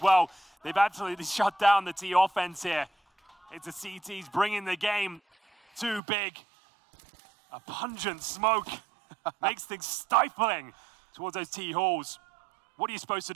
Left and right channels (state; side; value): drops out; left; at 6.0 s